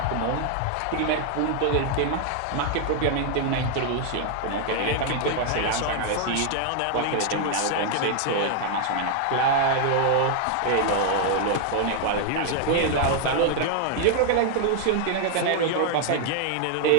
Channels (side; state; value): both; different; correlation 0.00